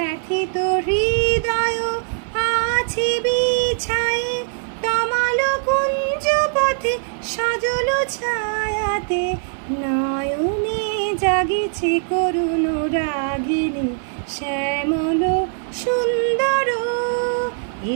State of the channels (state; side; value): silent; left; 57 dB below the other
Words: হৃদয় আছে বিছায়ে, তমাল কুঞ্জ পথে সজল ছায়াতে। নয়নে জাগিছে করুণ রাগিনী শ্যামল সুন্দর,